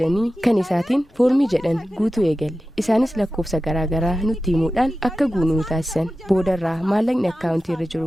kan isaatiin foormii jedhan guutuu eegalle isaanis lakkoofsa garaagaraa nutti himuudhaan akka guunuu taasisan boodarraa maallaqni akkaawuntii irra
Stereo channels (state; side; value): normal; both; correlation 0.94